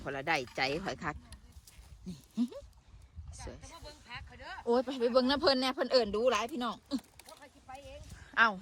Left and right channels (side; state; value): both; identical; correlation 1.00